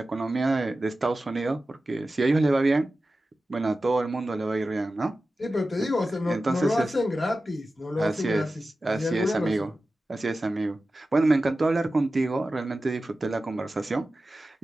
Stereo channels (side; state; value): both; normal; correlation 0.94